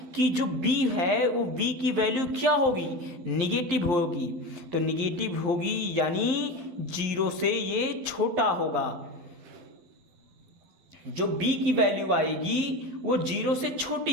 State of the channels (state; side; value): late; left; 11 ms